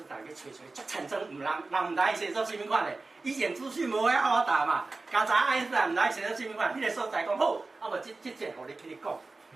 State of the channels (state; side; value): quieter; left; 3.5 dB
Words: 坦去找，足产生人毋知写作什么款的，以前资讯无遐好答嘛，刚才爱因斯坦毋知写作什么款，迄个所在讲好，啊无即节互你去你讲。